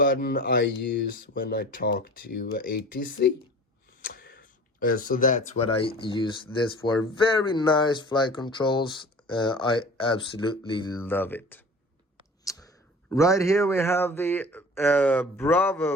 I use when I talk to ATC. So that's what I use this for. Very nice flight controls. I absolutely love it. Right here we have the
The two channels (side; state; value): both; normal; correlation 0.41